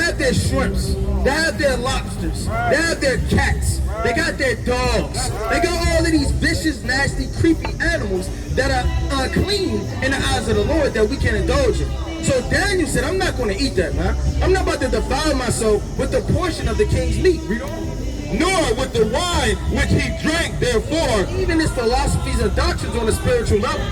their shrimps. They have their lobsters. They have their cats. They got their dogs. They got all of these vicious, nasty, creepy animals that are unclean in the eyes of the Lord that we can indulge in. So Daniel said, I'm not going to eat that, man. I'm not about to defile myself with the portion of the king's meat. Nor with the wine which he drank, therefore, Even his philosophies and doctrines on a spiritual level.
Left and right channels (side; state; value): both; identical; correlation 1.00